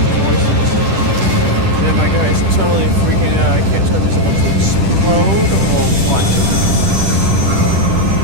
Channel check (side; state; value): left; late; 10 ms